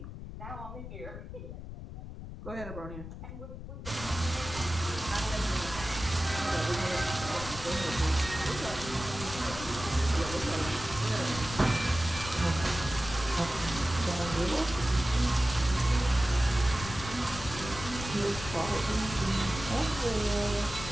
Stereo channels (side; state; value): left; noise; rumble, 10 dB below the sound